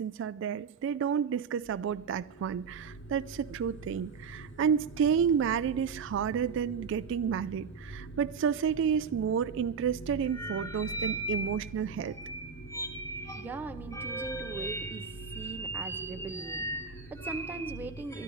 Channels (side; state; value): left; quieter; 6.2 dB